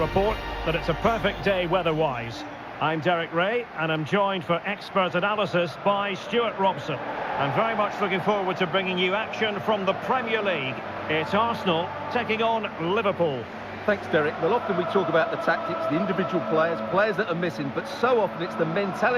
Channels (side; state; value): both; identical; correlation 1.00